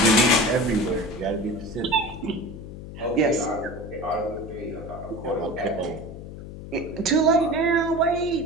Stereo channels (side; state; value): left; noise; hum, 12 dB below the sound